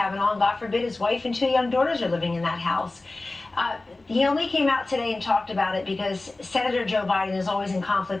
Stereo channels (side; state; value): right; quieter; 3.1 dB